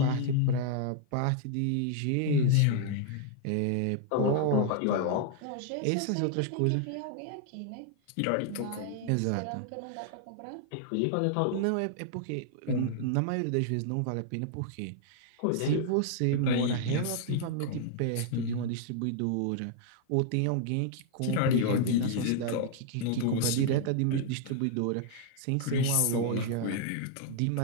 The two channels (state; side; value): different; both; correlation -0.01